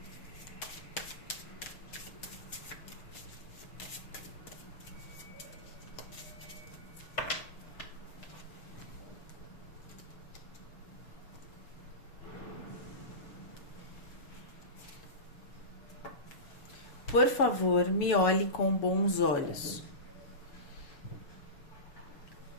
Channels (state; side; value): late; right; 6.6 ms